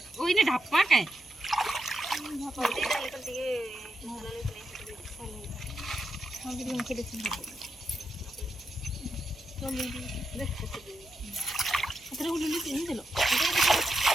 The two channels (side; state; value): both; normal; correlation 0.84